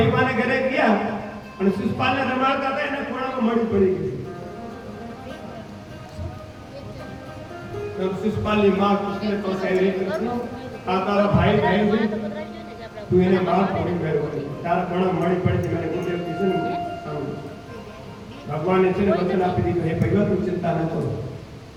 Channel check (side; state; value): both; identical; correlation 1.00